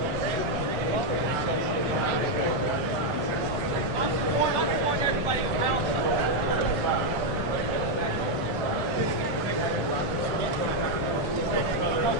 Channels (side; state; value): both; normal; correlation 0.01